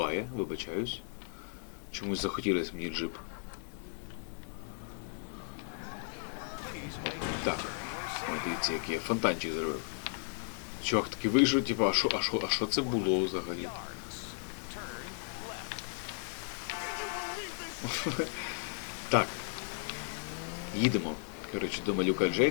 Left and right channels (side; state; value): right; silent; digital silence